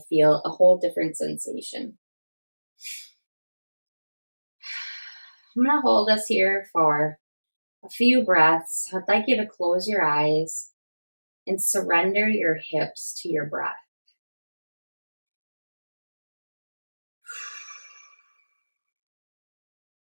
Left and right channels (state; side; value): inverted; both; correlation -1.00